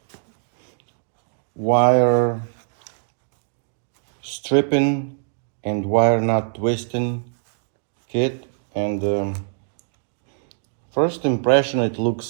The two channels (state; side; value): silent; left; digital silence